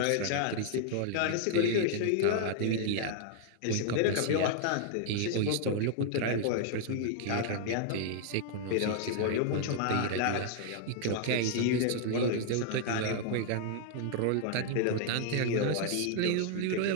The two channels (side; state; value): both; different; correlation -0.01